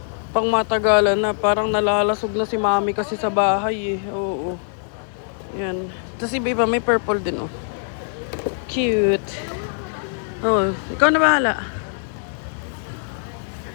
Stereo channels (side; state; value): right; silent; digital silence